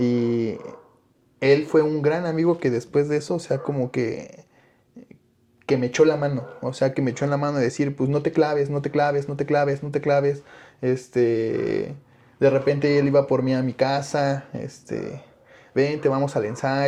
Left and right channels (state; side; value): identical; both; correlation 1.00